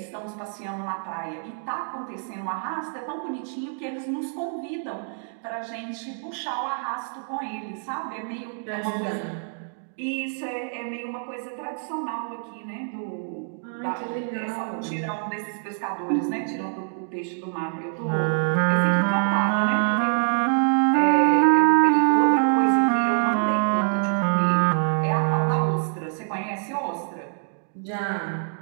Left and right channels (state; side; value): silent; left; 61 dB below the other